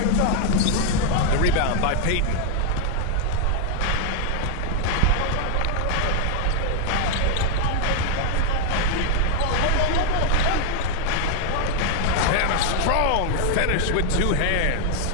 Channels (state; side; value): different; both; correlation 0.00